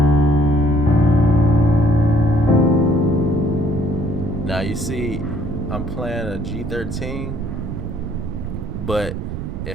Now you see I'm playing a G13, but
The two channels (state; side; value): noise; right; rumble, 6 dB below the sound